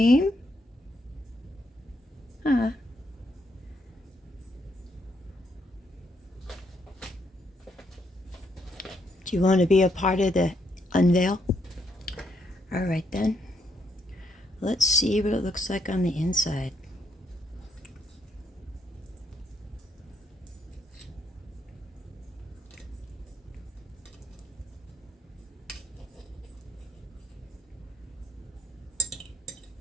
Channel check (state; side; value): normal; both; correlation 0.76